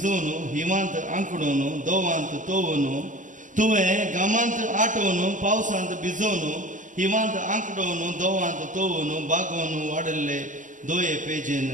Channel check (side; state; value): left; late; 0.37 ms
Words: हिमांत आंकडोवन दोवांत तोवून. तुवें घामांत आटोवन पावसांत भिजोवन हिमांत आंकडोवन दोवांत तोवून बागोवन वाडले दोये पेजेन